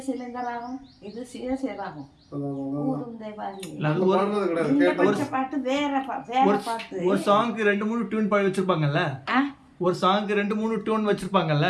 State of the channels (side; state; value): both; identical; correlation 1.00